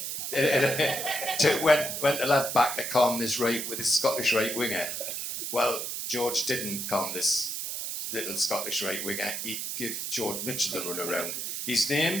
Went to left back to calm this right with his Scottish right winger. Well, George didn't calm this little Scottish right winger. He gave George Mitchell the run around. His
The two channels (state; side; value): noise; right; hiss, 4 dB below the sound